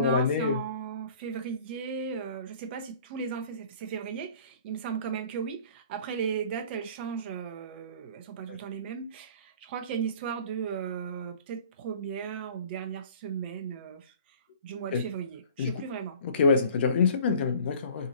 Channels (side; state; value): both; inverted; correlation -0.47